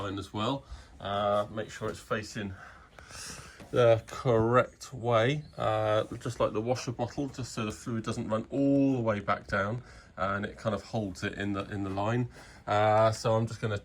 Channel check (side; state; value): both; identical; correlation 1.00